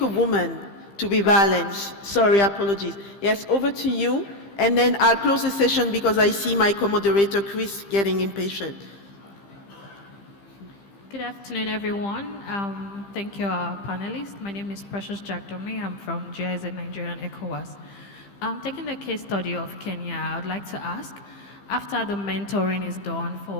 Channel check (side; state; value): right; late; 15 ms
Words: woman to be balanced. Sorry, apologies. Yes, over to you. And then I'll close the session because I see my co-moderator, Chris, getting impatient. Good afternoon, everyone. Thank you, our panelists. My name is Precious Jagdomi. I'm from GIZ Nigeria and ECOWAS. Taking the case study of Kenya, I would like to ask, after the mentoring is done